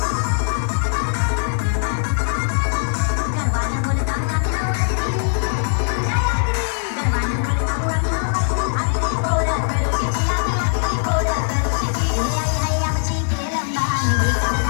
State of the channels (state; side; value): silent; right; 65 dB below the other